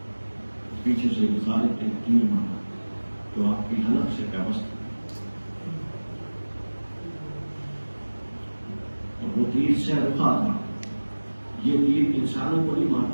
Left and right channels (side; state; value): both; inverted; correlation -1.00